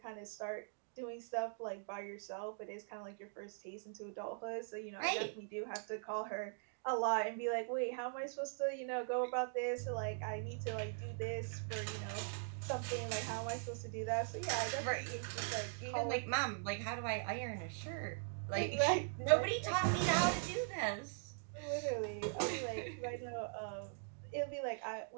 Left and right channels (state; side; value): silent; left; digital silence